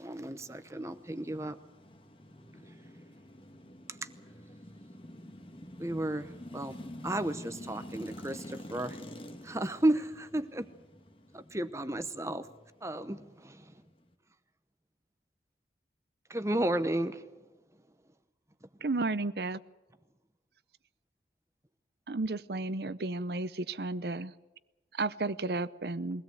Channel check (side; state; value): both; normal; correlation 0.66